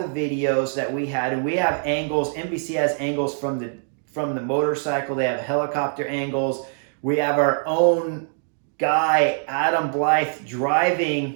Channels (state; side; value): silent; left; digital silence